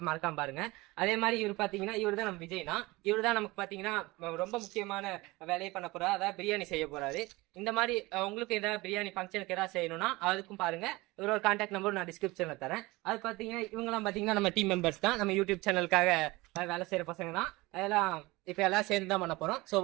மறக்காம பாருங்க. அதே மாதிரி இவர் பாத்தீங்கன்னா இவர் தான் நம்ம விஜய்னா, இவர் தான் நமக்கு பாத்தீங்கன்னா ரொம்ப முக்கியமான வேலையை பண்ண போறாரு. அதாவது பிரியாணி செய்ய போறாரு. இந்த மாதிரி உங்களுக்கு ஏதாவது பிரியாணி ஃபங்க்ஷனுக்கு ஏதாவது செய்யணும்னா அதுக்கும் பாருங்க. இவரோட கான்டாக்ட் நம்பர் நான் டிஸ்கிரிப்ஷன்ல தரேன். அது பாத்தீங்கன்னா இவங்கெல்லாம் பாத்தீங்கன்னா நம்ம டீம் மெம்பர்ஸ் தான், நம்ம யூடியூப் சேனலுக்காக வேலை செய்யற பசங்க தான். அதெல்லாம் இப்ப எல்லாம் சேர்ந்து தான் பண்ண போறோம். சோ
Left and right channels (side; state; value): left; quieter; 21.7 dB